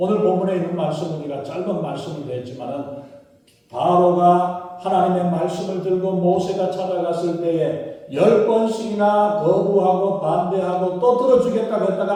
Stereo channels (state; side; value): identical; both; correlation 1.00